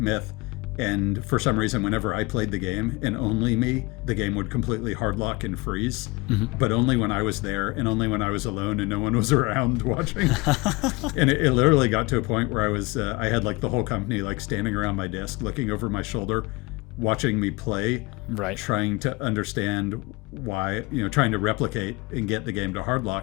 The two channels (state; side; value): quieter; right; 24.3 dB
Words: And for some reason, whenever I played the game, and only me, the game would completely hard lock and freeze. But only when I was there, and only when I was alone and no one was around watching. And it literally got to a point where I had like the whole company like standing around my desk, looking over my shoulder, watching me play, Right. trying to understand why, trying to replicate and get the game to hard